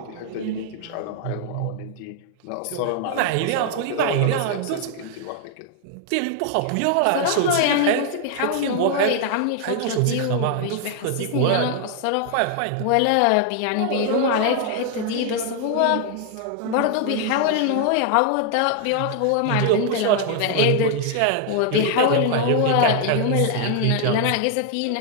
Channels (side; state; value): both; different; correlation 0.00